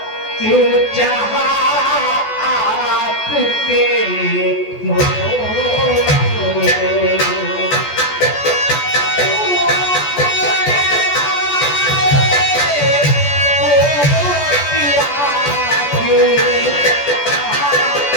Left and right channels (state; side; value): late; right; 14 ms